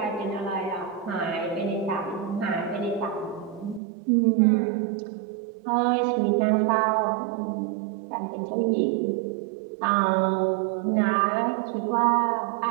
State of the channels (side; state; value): left; drops out; at 3.8 s